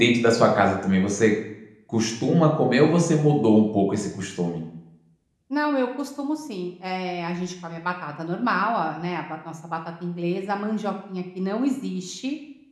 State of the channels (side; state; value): both; identical; correlation 1.00